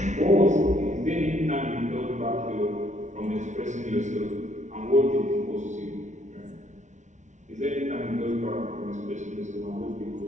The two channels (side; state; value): left; late; 0.35 ms